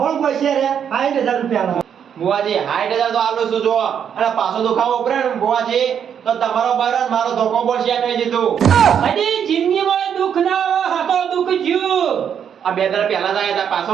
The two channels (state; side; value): quieter; left; 8.2 dB